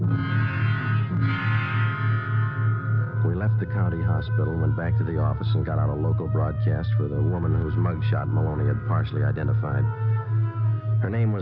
We left the county hospital, went back to the office, and got out a local broadcast for the woman whose mugshot Maloney had partially identified. Her name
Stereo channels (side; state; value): both; identical; correlation 1.00